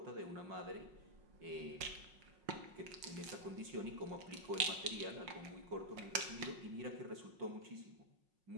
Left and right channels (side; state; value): left; late; 5.5 ms